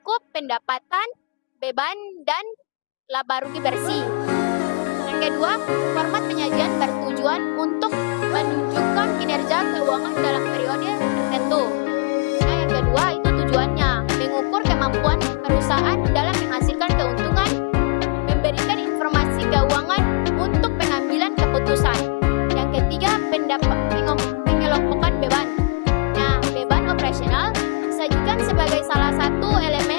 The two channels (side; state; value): right; quieter; 33.1 dB